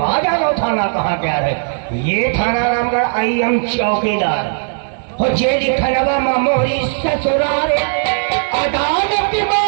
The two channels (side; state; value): left; silent; digital silence